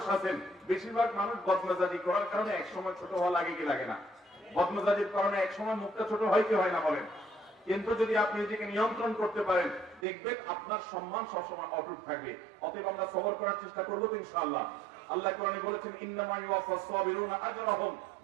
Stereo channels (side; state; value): left; drops out; at 10.1 s